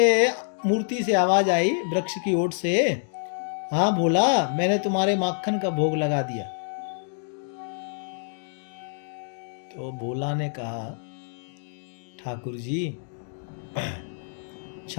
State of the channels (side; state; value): right; silent; digital silence